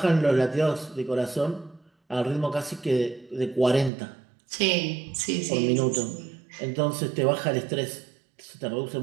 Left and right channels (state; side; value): drops out; left; at 3.9 s